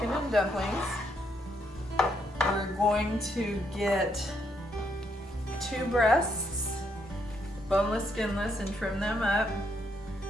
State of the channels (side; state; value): both; normal; correlation 0.75